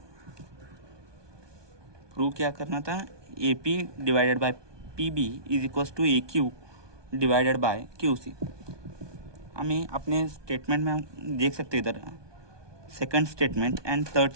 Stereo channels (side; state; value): left; late; 1.2 ms